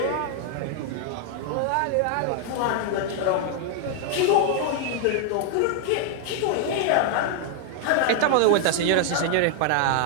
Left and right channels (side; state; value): both; different; correlation 0.00